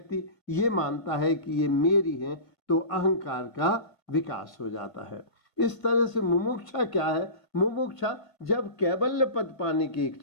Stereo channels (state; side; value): late; right; 1.5 ms